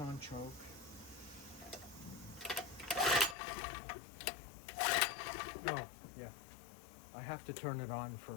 choke. Oh, yeah. I have to turn it on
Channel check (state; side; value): drops out; right; at 3.4 s